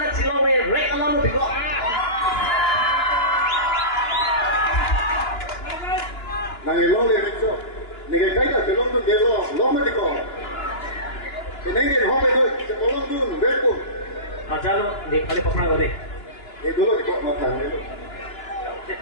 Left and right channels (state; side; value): late; right; 2.9 ms